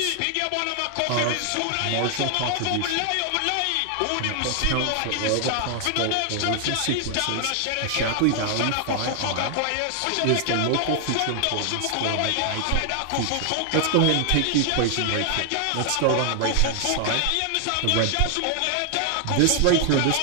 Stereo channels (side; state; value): both; different; correlation 0.00